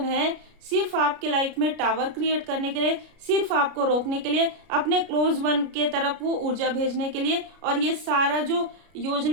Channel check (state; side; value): late; left; 33 ms